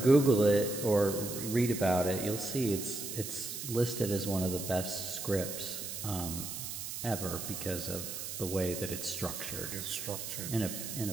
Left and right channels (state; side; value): noise; right; hiss, 6 dB below the sound